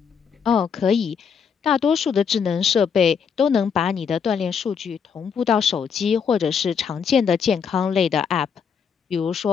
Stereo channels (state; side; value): quieter; right; 6.7 dB